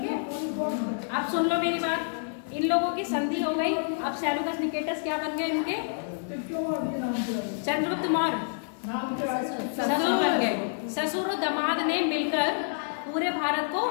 अब सुन लो मेरी बात। इन लोगों की संधि हो गई। अब सैलुकस निकेटस क्या बन गए? इनके चंद्रगुप्त मौर्य ससुर बन गए। ससुर और दामाद ने मिलकर पूरे भारत को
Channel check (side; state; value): right; silent; digital silence